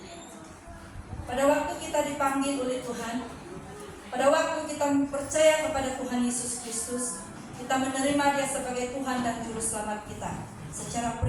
Pada waktu kita dipanggil oleh Tuhan, pada waktu kita percaya kepada Tuhan Yesus Kristus, kita menerima Dia sebagai Tuhan dan Juru Selamat kita secara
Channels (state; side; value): identical; both; correlation 1.00